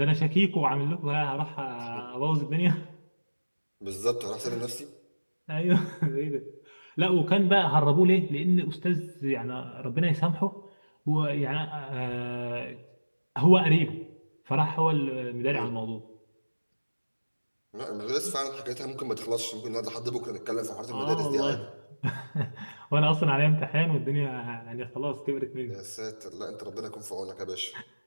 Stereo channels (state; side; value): inverted; both; correlation -1.00